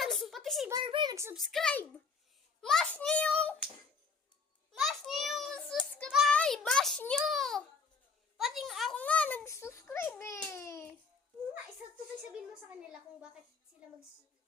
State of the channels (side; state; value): right; quieter; 5.0 dB